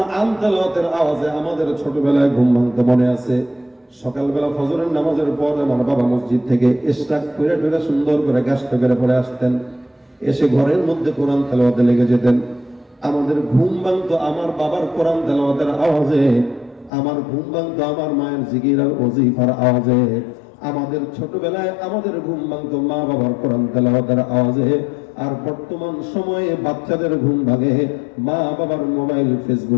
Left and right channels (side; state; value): right; drops out; at 16.9 s